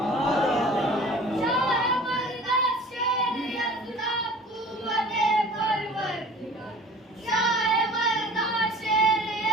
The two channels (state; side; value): normal; both; correlation 0.45